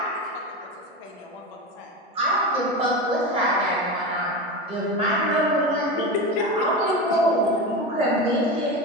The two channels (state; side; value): normal; both; correlation 0.22